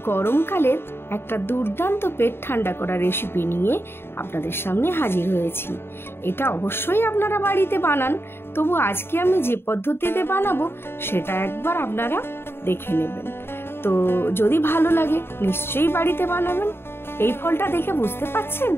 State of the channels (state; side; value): late; right; 0.11 ms